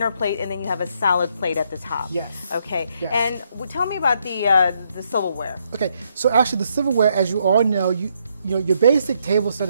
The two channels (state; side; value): inverted; both; correlation -0.74